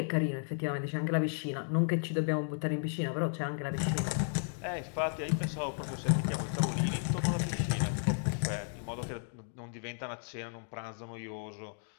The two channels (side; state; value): right; silent; digital silence